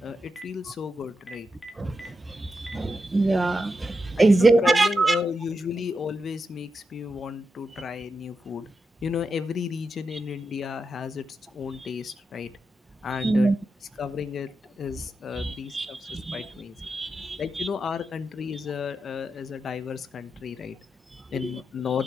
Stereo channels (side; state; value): both; normal; correlation 0.87